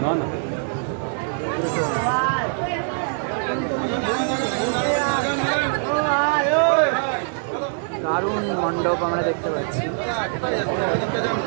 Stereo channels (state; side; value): silent; left; 63 dB below the other